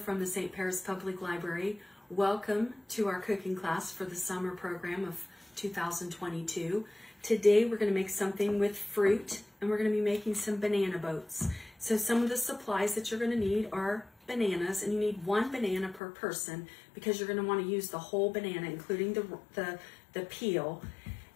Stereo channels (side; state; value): right; drops out; at 16.0 s